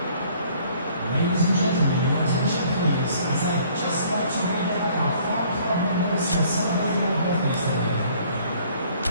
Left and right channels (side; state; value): both; inverted; correlation -0.58